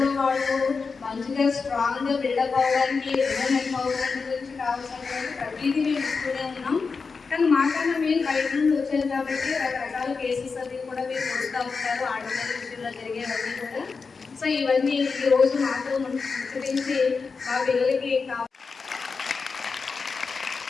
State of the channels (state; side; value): quieter; right; 4.8 dB